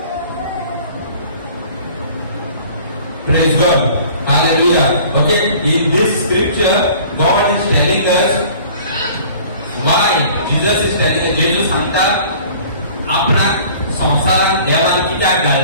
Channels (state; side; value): inverted; both; correlation -0.49